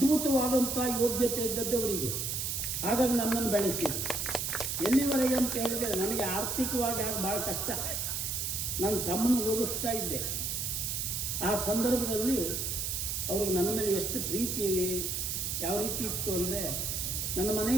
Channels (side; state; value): right; noise; hiss, 1 dB below the sound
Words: ಯೋಗ್ಯತೆ ಇದ್ದದ್ದವರಿಗೆ. ಹಾಗಾಗಿ ನನ್ನನ್ನು ಬೆಳೆಸಿದ್ರು. ಎಲ್ಲಿವರೆಗೆ ಅಂತ ಹೇಳಿದರೆ, ನನಗೆ ಆರ್ಥಿಕವಾಗಿ ಆಗ ಭಾಳ ಕಷ್ಟ. ನನ್ನ ತಮ್ಮನ ಓದಿಸ್ತಾ ಇದ್ದೆ. ಆ ಸಂದರ್ಭದಲ್ಲಿ ಅವ್ರಿಗೆ ನನ್ನ ಮೇಲೆ ಎಷ್ಟು ಪ್ರೀತಿ, ಯಾವ ರೀತಿ ಇತ್ತು ಅಂದರೆ, ನನ್ನ ಮನೆ